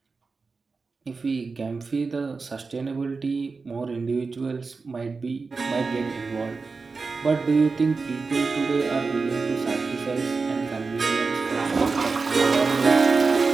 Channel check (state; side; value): quieter; left; 4.4 dB